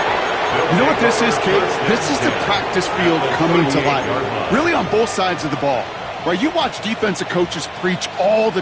Kate, this is the practice field coming to life, really on both sides of the ball. Right, you watch defensive coaches preach all the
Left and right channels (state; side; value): identical; both; correlation 1.00